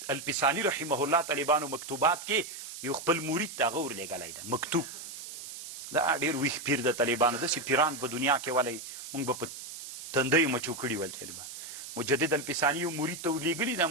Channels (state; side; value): noise; right; hiss, 11 dB below the sound